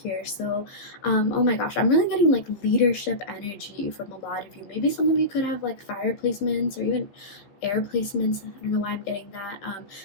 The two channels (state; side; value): late; right; 15 ms